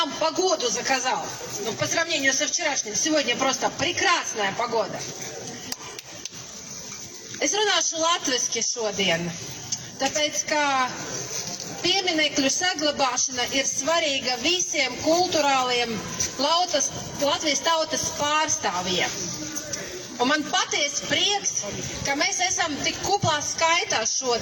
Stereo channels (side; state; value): both; identical; correlation 1.00